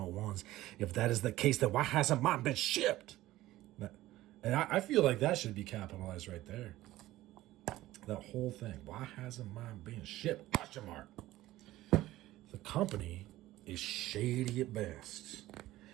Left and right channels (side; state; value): left; quieter; 16.1 dB